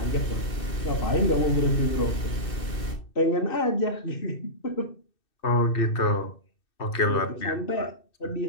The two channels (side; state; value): right; late; 2.6 ms